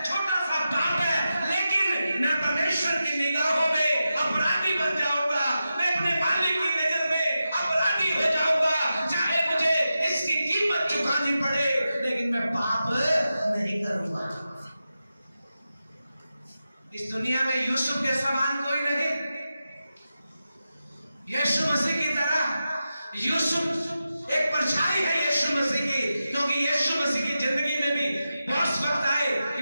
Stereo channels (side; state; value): both; inverted; correlation -0.91